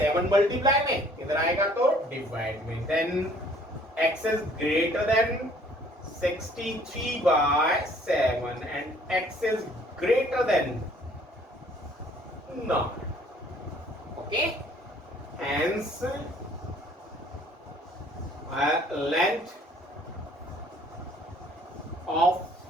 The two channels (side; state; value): both; normal; correlation 0.57